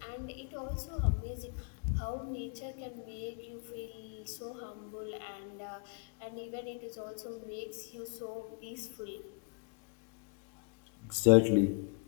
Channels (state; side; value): quieter; right; 31.2 dB